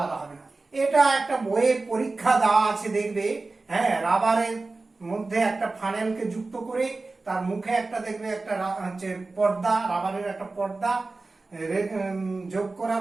হবে না। এটা একটা বইয়ে পরীক্ষা দেওয়া আছে, দেখবে। হ্যাঁ, রাবারের মধ্যে একটা ফানেলকে যুক্ত করে তার মুখে একটা দেখবে একটা হচ্ছে পর্দা, রাবারের একটা পর্দা যোগ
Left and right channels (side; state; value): left; quieter; 3.5 dB